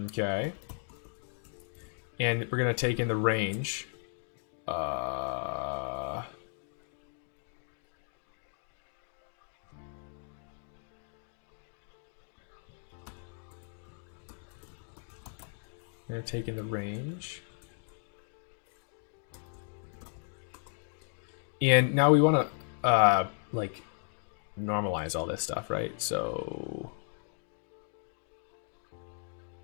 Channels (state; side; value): silent; right; 54 dB below the other